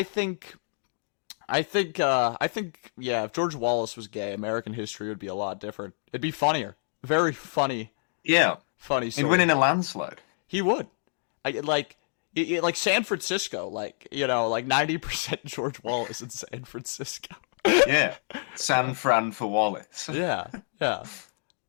think yeah. If George Wallace was gay, American history would be a lot different. It'd be funnier, very funny, Yeah, funny he'd win story. in a landslide. He would. Like San Francisco, like you know, like 90% George Wallace in San Francisco. Yeah, San Fran for Wallace. Yeah, yeah,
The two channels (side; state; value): right; silent; digital silence